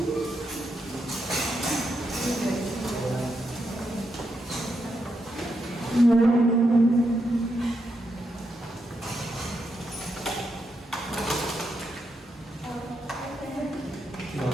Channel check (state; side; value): normal; both; correlation 0.82